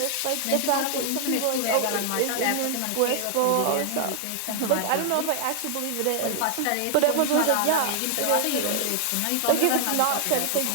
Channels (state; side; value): different; both; correlation 0.00